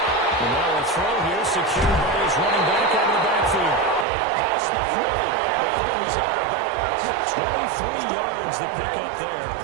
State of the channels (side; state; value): left; drops out; at 4.0 s